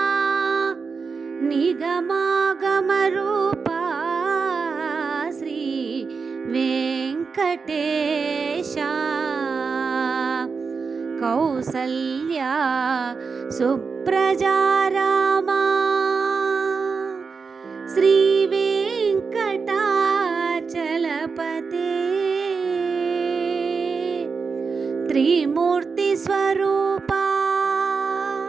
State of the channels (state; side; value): quieter; left; 5.0 dB